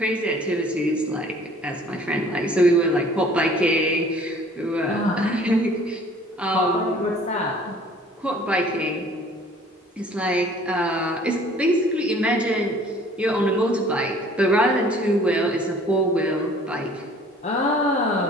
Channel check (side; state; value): both; normal; correlation 0.52